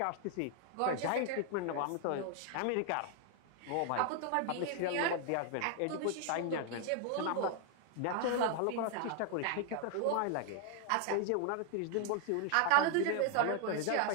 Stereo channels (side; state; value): both; different; correlation 0.00